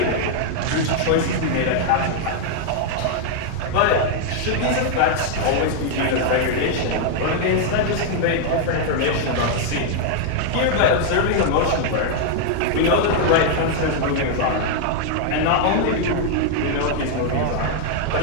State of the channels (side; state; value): both; different; correlation 0.00